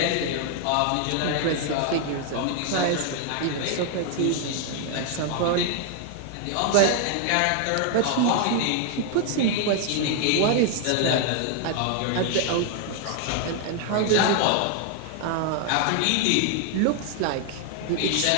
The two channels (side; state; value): both; different; correlation 0.00